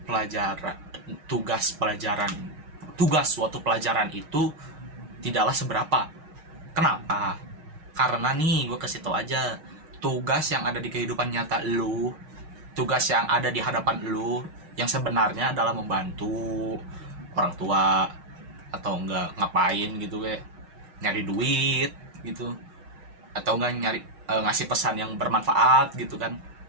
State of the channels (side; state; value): left; late; 6.4 ms